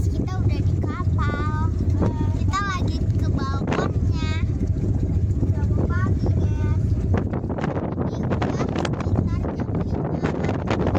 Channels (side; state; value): both; identical; correlation 1.00